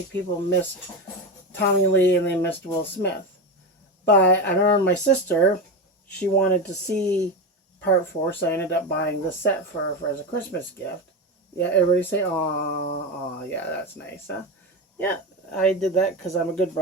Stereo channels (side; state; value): both; normal; correlation 0.18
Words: people missed Tommy Lee and they missed Will Smith. But I remember my sister, she wanted to see part 4, so I ended up buying the set for her as a Christmas gift. Yeah, everybody say, "Aw, yeah, that's nice, huh?" Yeah, I did that because I'm a good